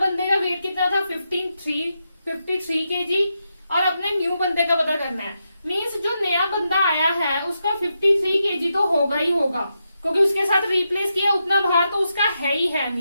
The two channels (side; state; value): both; inverted; correlation -0.85